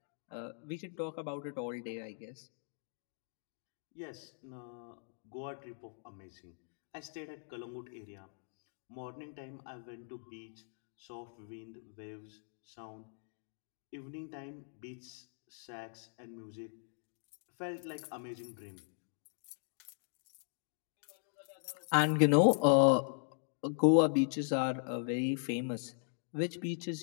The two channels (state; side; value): silent; right; digital silence